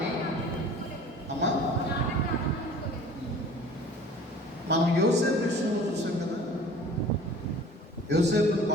అమ్మా మనం యోసేపు విషయంలో చూసాం కదా, యోసేపును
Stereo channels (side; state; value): both; normal; correlation 0.46